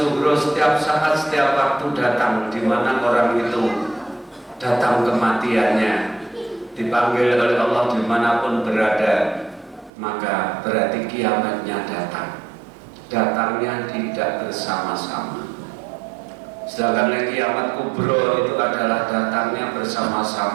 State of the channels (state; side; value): drops out; left; at 9.9 s